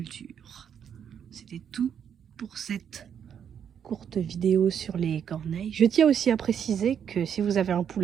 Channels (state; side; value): quieter; left; 8.3 dB